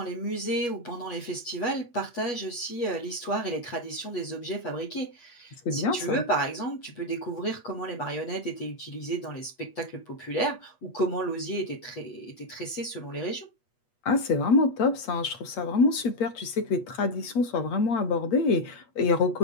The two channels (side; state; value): right; late; 8.3 ms